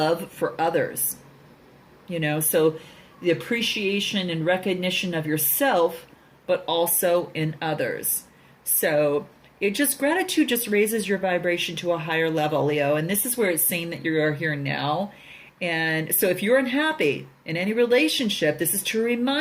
for others. So the appreciation and recognition of yourself, but also in others. So gratitude just raises your vibration to a higher level, Leo. And this is where it's saying that you are here now. And so if you're unhappy in any relationship, this is to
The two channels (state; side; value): identical; both; correlation 1.00